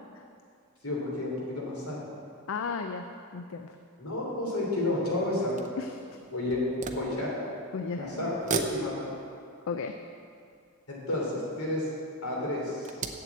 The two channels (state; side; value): normal; both; correlation 0.11